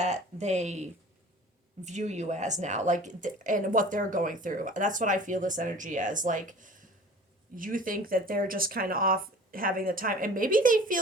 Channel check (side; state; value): both; normal; correlation 0.44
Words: they view you as now, like and what they're going through. That's what I feel this energy as. Like you think that they're just kind of off having the time, and maybe they